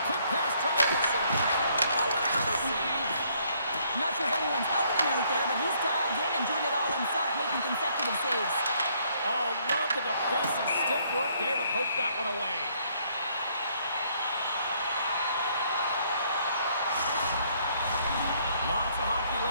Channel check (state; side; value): inverted; both; correlation -0.67